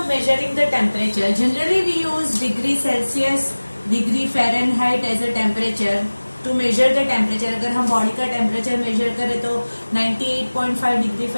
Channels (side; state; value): both; inverted; correlation -1.00